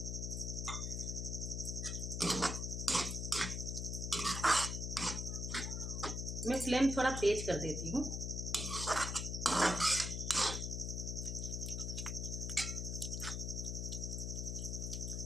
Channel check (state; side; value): noise; left; hum, 2 dB below the sound